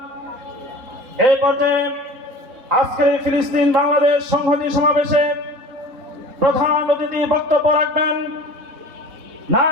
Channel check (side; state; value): left; late; 4.1 ms